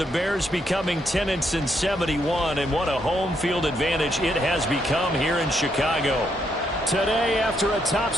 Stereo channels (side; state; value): both; normal; correlation 0.76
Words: the Bears becoming 10-71, and what a home field advantage it has become here in Chicago. Today, after a